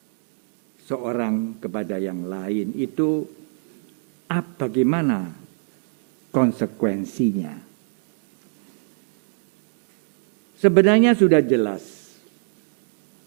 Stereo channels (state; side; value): silent; left; 57 dB below the other